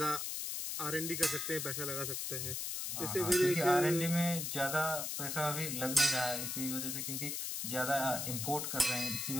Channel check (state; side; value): noise; left; hiss, 3 dB below the sound